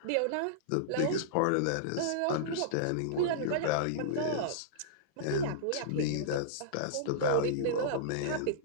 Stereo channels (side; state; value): both; different; correlation -0.02